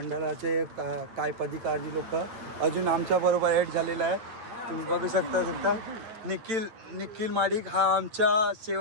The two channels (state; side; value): late; left; 8.9 ms